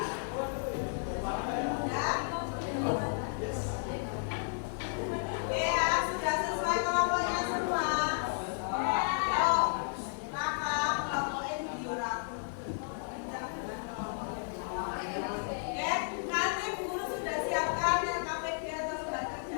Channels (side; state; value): right; silent; digital silence